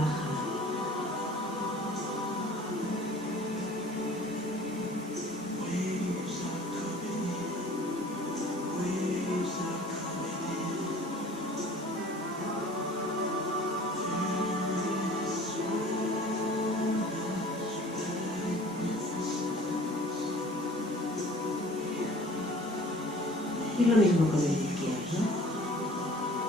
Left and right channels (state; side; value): normal; both; correlation 0.48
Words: Y lo mismo con el izquierdo.